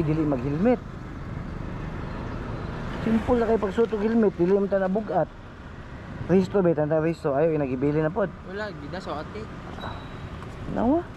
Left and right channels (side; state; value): both; identical; correlation 1.00